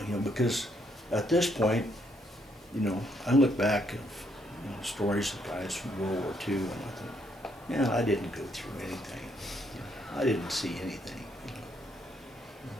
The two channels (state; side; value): normal; both; correlation 0.72